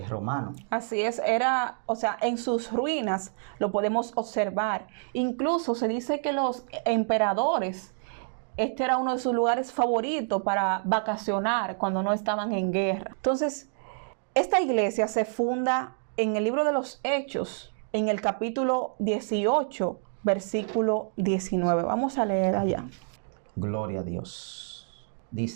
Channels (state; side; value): silent; left; digital silence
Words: Romano. Así es, en sus ruinas lo podemos observar. Incluso se dice que los emperadores este era uno de sus lugares favoritos para vacacionar cuando no estaban en guerra. Entonces, esta iglesia se funda en el libro de los Hechos, en el capítulo 18, versículo 19. Vamos a leer allá. Gloria a Dios.